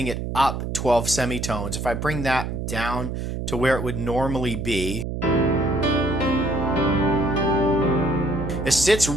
it up 12 semitones, if I bring that down to where it would normally be, it sits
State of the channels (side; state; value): right; noise; hum, 4 dB below the sound